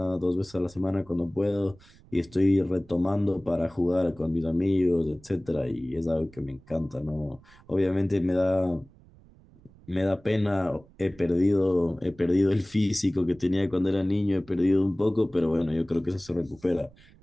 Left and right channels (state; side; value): noise; right; rumble, 26 dB below the sound